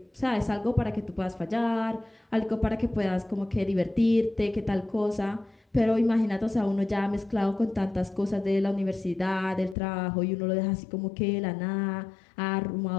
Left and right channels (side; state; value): right; drops out; at 9.8 s